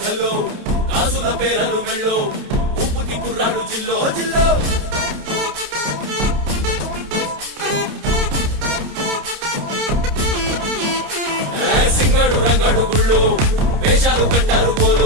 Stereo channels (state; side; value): late; left; 29 ms